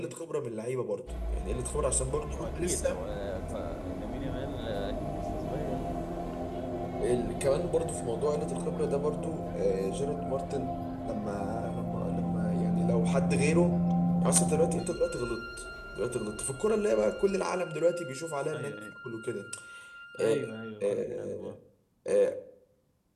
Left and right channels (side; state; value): both; identical; correlation 1.00